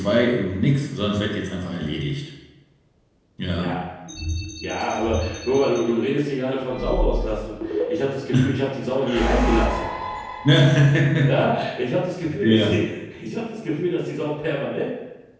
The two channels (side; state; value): both; identical; correlation 1.00